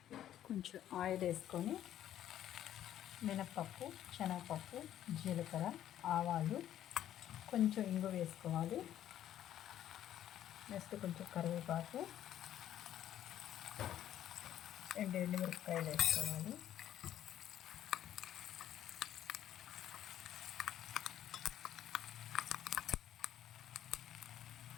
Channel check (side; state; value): right; quieter; 11.5 dB